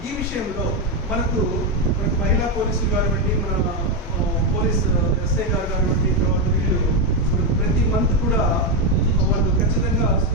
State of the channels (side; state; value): both; normal; correlation 0.06